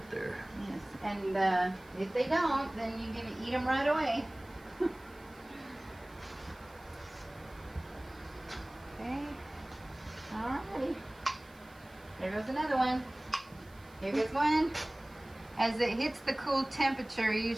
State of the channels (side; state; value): right; noise; hiss, 27 dB below the sound